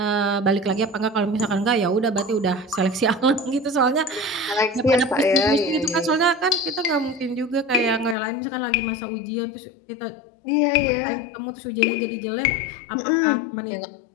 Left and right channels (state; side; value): drops out; right; at 8.2 s